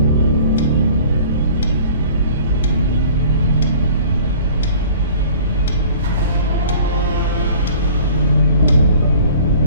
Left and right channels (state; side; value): inverted; both; correlation -0.48